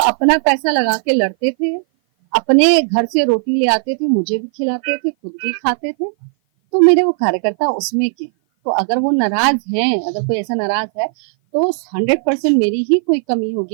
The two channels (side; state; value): left; silent; 57 dB below the other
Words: अपना पैसा लगा के लड़ते थे, अपने घर से रोटी ले आते थे, मुझे भी खिलाते थे, खुद भी खाते थे। तो मेरे वो कार्यकर्ता उसमें के, तो अगर वो नाराज हैं, अगर कोई ऐसा नाराज है तो 100% मेरी ही कोई कमी